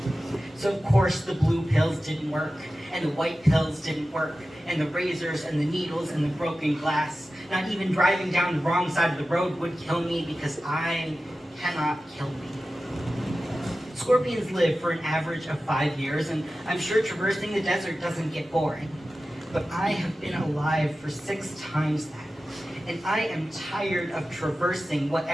So of course the blue pills didn't work, and the white pills didn't work, and the razors and the needles and the broken glass. Not even driving down the wrong side of the road would kill me because I cannot kill me. Scorpions live for an average of 5 years, and I'm sure traversing the desert doesn't get boring. But I have been alive for 6 times that. And I am tired of traversing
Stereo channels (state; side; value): normal; both; correlation 0.94